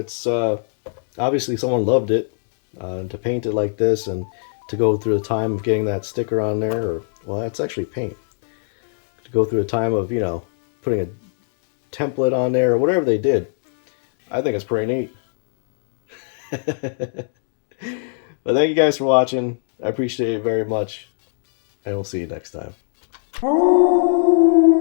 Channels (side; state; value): right; silent; digital silence